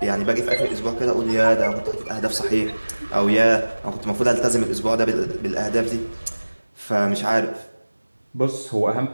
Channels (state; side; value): inverted; both; correlation -1.00